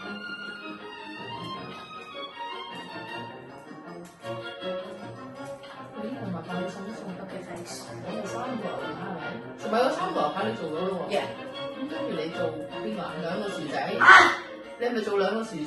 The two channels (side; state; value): both; identical; correlation 1.00